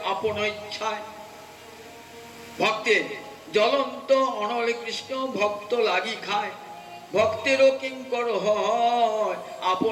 আপন ইচ্ছায়। ভক্তের জ্বলন্ত অনলে কৃষ্ণ ভক্ত লাগি খায়, ভক্তেরও কিঙ্কর হয়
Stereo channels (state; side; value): identical; both; correlation 1.00